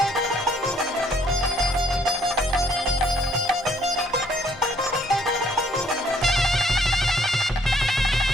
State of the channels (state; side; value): normal; both; correlation 0.64